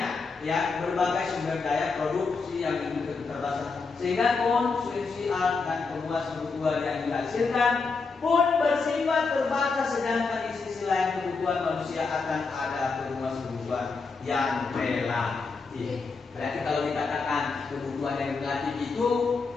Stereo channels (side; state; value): right; quieter; 4.5 dB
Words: ya, berbagai sumber daya produksi yang terbatas, sehingga konsumsi alat dan pemuas kebutuhan yang dihasilkan pun bersifat terbatas, sedangkan di sisi lain kebutuhan manusia akan ada pemuas kebutuhan yang relatif. Berarti kalau dikatakan kebutuhan yang relatif itu